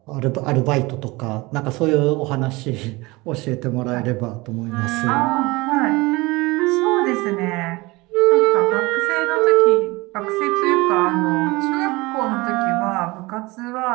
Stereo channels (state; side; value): quieter; left; 22.8 dB